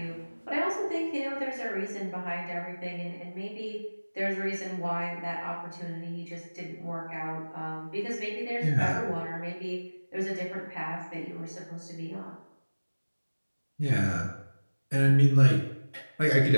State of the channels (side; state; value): both; inverted; correlation -1.00